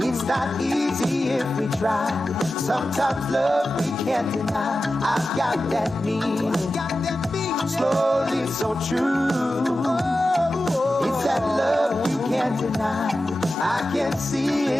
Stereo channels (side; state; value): both; normal; correlation 0.93